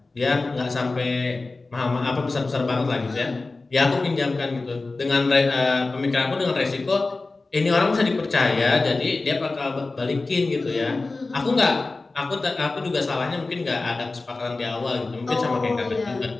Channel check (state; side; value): quieter; right; 3.5 dB